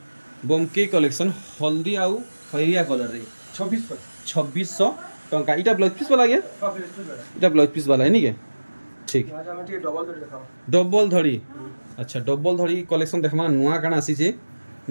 बमकी कलेक्शन हल्दी आउ खैरिया कलर रे 2600 टंका इटा ब्लाउज पीस वाला गया इटा ब्लाउज पीस वाला है नी के ठीक डबल धड़ी अच्छा डबल धड़ी कलेक्शन देखमा नुआ काना आसी छे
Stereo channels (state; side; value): inverted; both; correlation -1.00